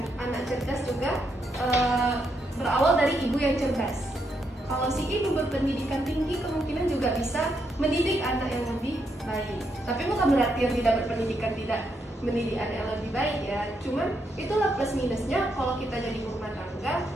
anak cerdas juga berawal dari ibu yang cerdas. Kalau si ibu berpendidikan tinggi, kemungkinan juga bisa mendidik anak yang lebih baik. Tapi bukan berarti yang tidak berpendidikan tidak mendidik anak yang lebih baik ya. Cuman itulah plus minusnya kalau kita jadi rumah tangga,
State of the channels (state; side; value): normal; both; correlation 0.79